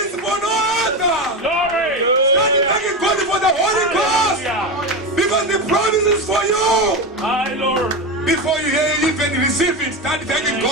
for no other. Glory. Start thanking God for the Holy Ghost. Hallelujah. Because the promise is for you. My Lord. Before you even receive it, start thanking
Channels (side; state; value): both; normal; correlation 0.18